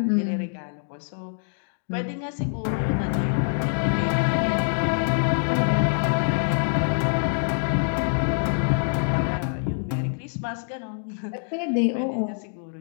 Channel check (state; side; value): silent; right; digital silence